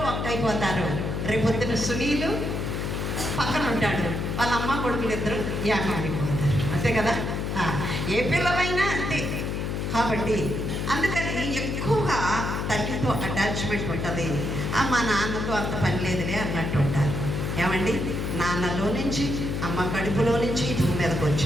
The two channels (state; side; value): noise; left; hum, 2 dB below the sound